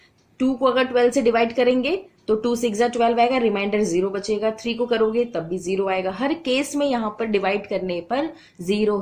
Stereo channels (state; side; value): identical; both; correlation 1.00